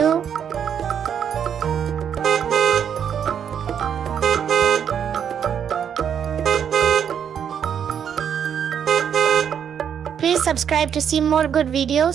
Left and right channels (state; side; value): quieter; left; 8.3 dB